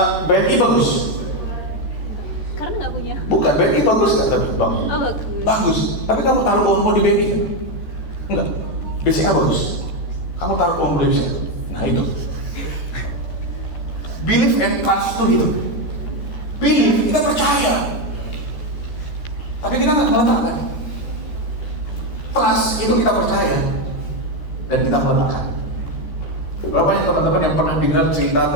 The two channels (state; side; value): late; right; 13 ms